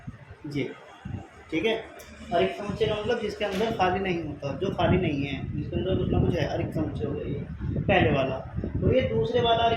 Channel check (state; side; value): identical; both; correlation 1.00